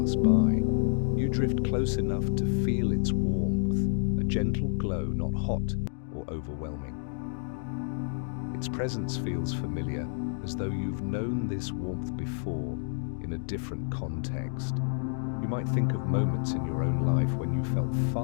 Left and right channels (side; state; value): right; silent; digital silence